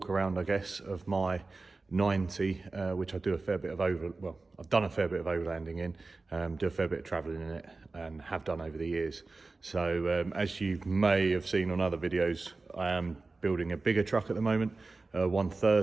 around, I guess, of my 90, which I do a fair bit of I've done a fair bit of overlanding in, do a fair bit of travelling in it, and have done over the years. So as you may have seen on other videos, I am building a bigger truck at the moment,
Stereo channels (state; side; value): quieter; left; 3.6 dB